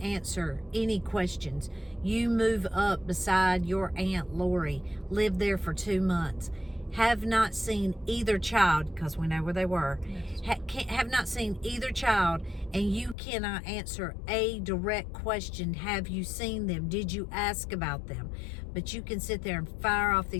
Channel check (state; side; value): drops out; right; at 13.2 s